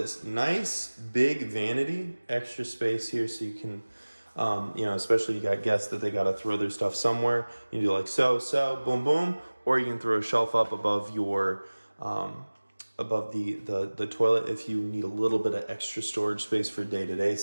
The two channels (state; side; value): inverted; both; correlation -1.00